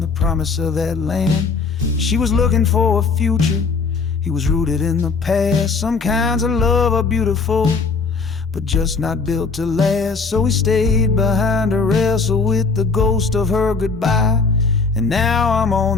promise of that land. She was looking for a future, he was rooted in the past. Some kinds of love are beautiful, but just not built to last. So he stayed behind to wrestle with the ghost of her goodbye. And now I'm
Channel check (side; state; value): right; quieter; 4.6 dB